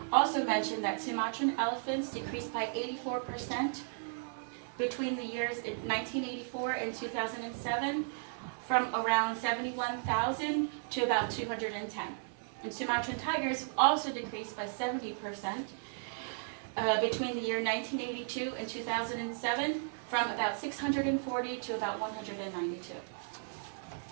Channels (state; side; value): silent; left; digital silence